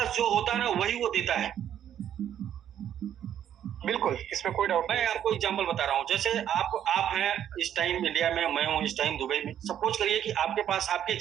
जो होता है ना वही वो देता है। बिल्कुल, इसमें कोई डाउट नहीं। मैं आपको एग्जांपल बता रहा हूँ। जैसे आप हैं इस टाइम इंडिया में, मैं हूँ इस टाइम दुबई में। सपोज करिए कि आपके पास आपके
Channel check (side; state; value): left; quieter; 10.2 dB